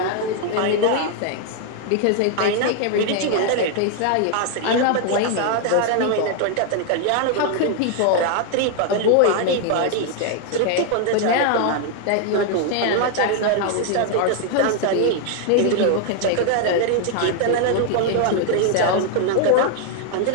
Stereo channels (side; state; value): both; different; correlation 0.00